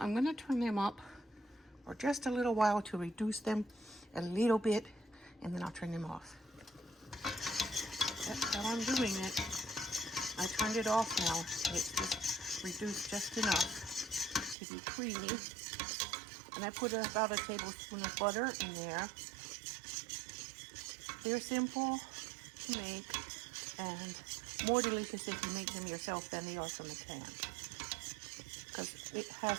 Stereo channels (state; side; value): drops out; left; at 14.6 s